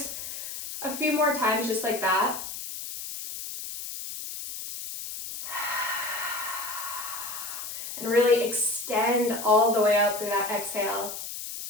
a few more times just like that. And really extend all the way out through that exhale.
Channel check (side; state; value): left; noise; hiss, 8 dB below the sound